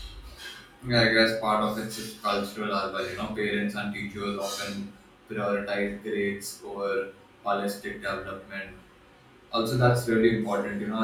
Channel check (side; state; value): both; identical; correlation 1.00